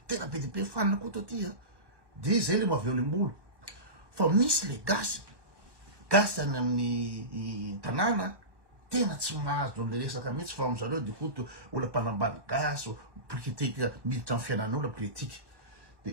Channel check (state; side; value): late; left; 1.2 ms